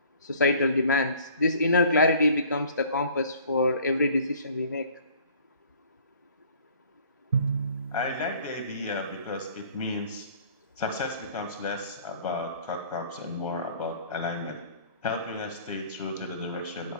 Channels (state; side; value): inverted; both; correlation -0.53